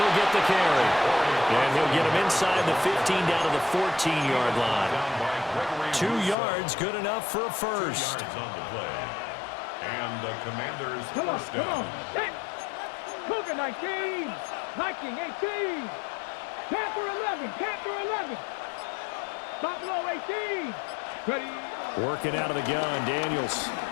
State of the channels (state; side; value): drops out; right; at 6.4 s